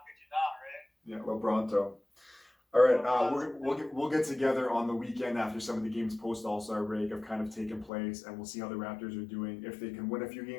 could you not, right? Yeah, LeBronto. All right, we'll get together on the weekend after some of the games post All-Star break have kind of taken place, and we'll see how the Raptors are doing, if they can win a few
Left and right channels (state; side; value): drops out; right; at 7.9 s